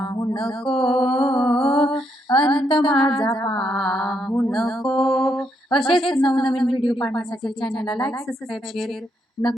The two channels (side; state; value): both; normal; correlation 0.77